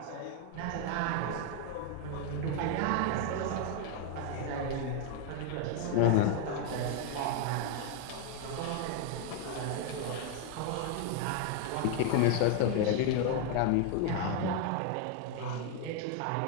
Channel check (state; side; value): different; both; correlation 0.00